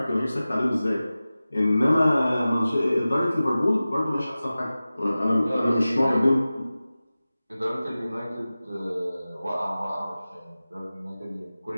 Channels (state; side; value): inverted; both; correlation -0.96